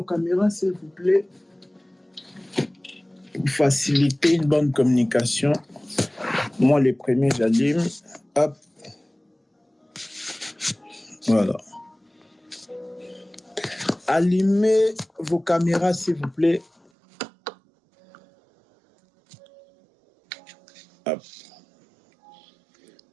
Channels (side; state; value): left; drops out; at 16.9 s